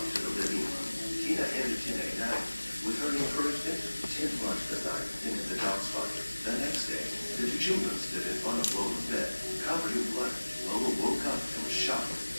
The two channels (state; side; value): inverted; both; correlation -1.00